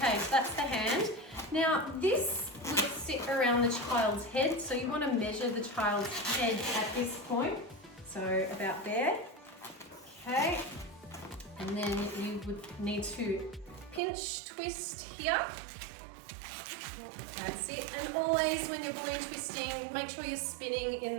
so that's the hand. Now this will sit around the child's head, so you want to measure the child's head at this point. So about there. Okay, and then you would need to pinch twist here. That's it. And always when you're balloon twisting, make sure you're spinning in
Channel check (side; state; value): left; drops out; at 14.0 s